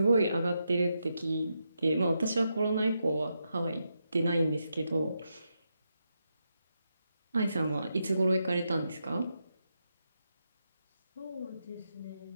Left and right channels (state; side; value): inverted; both; correlation -0.84